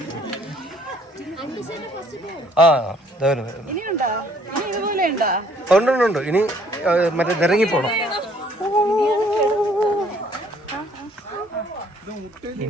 ഉണ്ട്. ഇനി മറ്റേ നിരങ്ങി പോണം.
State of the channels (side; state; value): both; normal; correlation 0.61